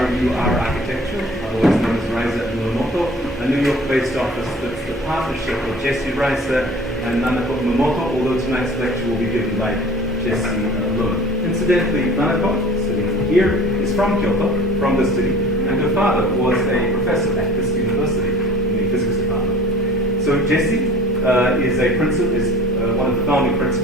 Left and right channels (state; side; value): normal; both; correlation 0.46